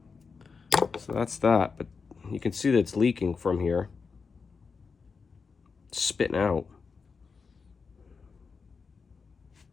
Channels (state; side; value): quieter; right; 5.1 dB